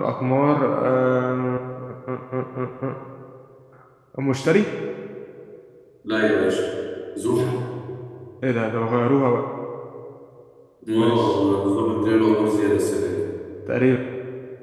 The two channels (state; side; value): identical; both; correlation 1.00